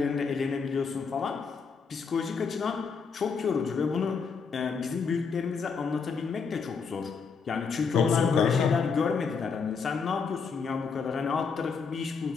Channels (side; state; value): right; quieter; 5.4 dB